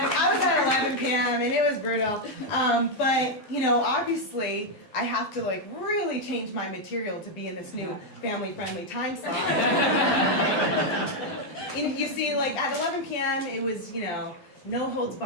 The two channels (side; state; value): right; late; 12 ms